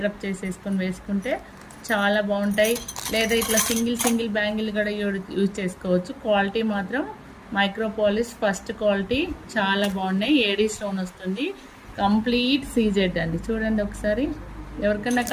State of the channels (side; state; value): both; identical; correlation 1.00